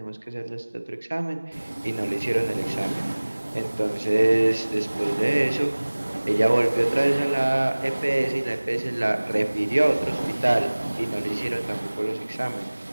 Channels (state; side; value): inverted; both; correlation -1.00